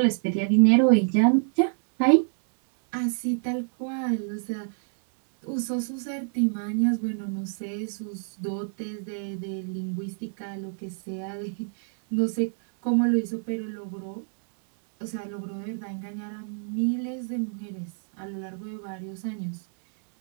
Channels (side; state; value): left; silent; 59 dB below the other